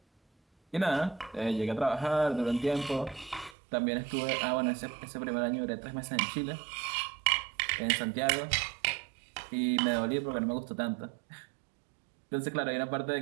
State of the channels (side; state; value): left; drops out; at 3.6 s